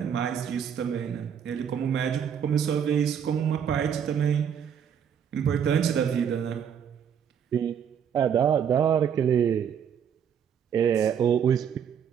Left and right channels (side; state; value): left; quieter; 8.1 dB